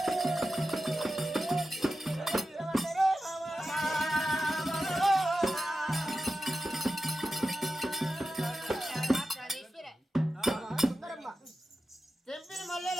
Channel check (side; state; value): both; normal; correlation 0.92